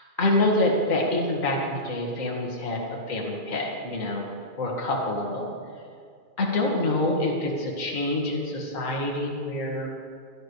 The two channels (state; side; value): late; left; 2.4 ms